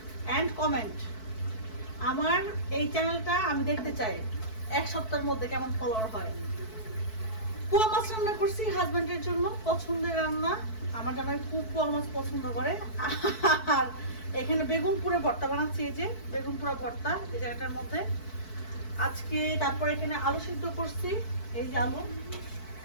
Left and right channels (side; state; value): right; late; 4.6 ms